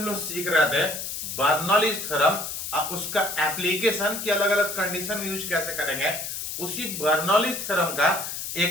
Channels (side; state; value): left; noise; hiss, 5 dB below the sound